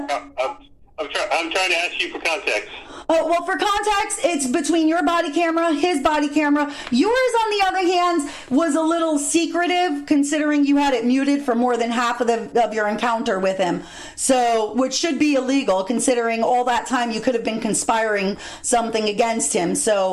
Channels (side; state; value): both; identical; correlation 1.00